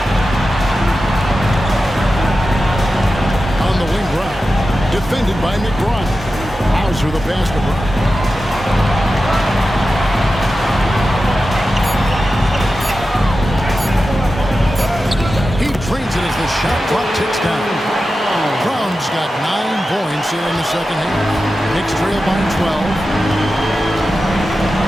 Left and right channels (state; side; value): normal; both; correlation 0.92